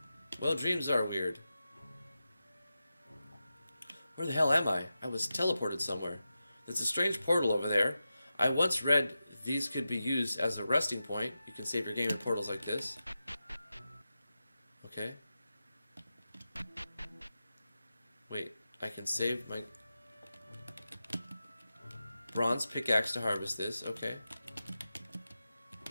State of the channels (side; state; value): both; inverted; correlation -0.92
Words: Well, dreams are weird. Where the hell am I? I was teleported somewhere. There's a strange portal over there. I once read these could be used as a resting point. You can save your game in portals like this. Okay. Wait, I can save my bronze pickaxe to harvest this. Okay.